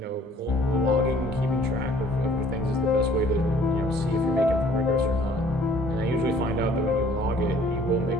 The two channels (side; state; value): both; normal; correlation 0.56